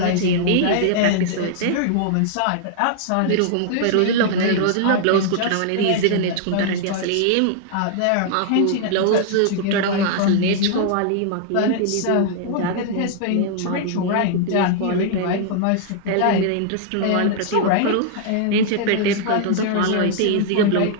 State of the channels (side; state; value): both; different; correlation -0.01